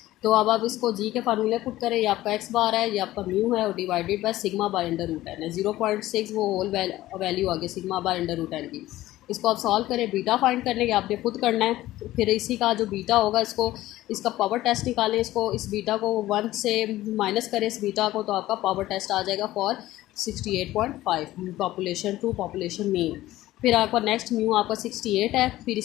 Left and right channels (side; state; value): right; quieter; 15.8 dB